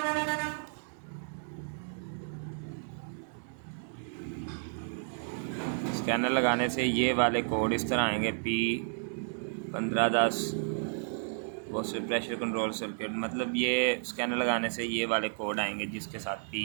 स्कैनर लगाने से ये वाले कोड इस तरह आएंगे, P1510 box pressure control circuit, मतलब ये स्कैनर लगाने से ये वाले कोड आएंगे जिसके साथ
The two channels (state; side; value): silent; left; 56 dB below the other